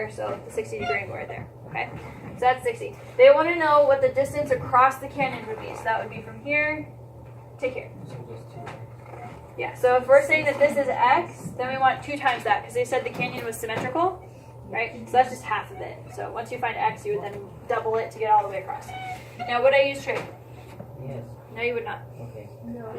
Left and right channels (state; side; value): identical; both; correlation 1.00